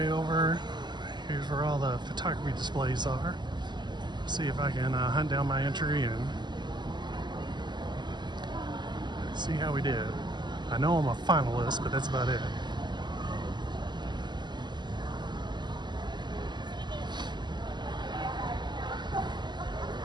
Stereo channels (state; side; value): late; left; 0.21 ms